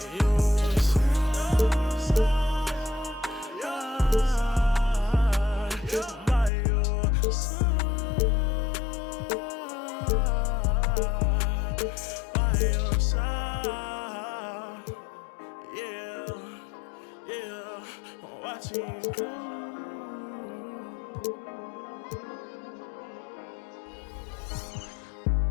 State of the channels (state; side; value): drops out; right; at 6.5 s